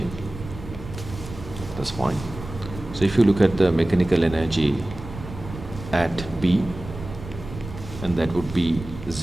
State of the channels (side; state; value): right; noise; rumble, 12 dB below the sound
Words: that's fine. So if you look at the mechanical energy at B, and that would be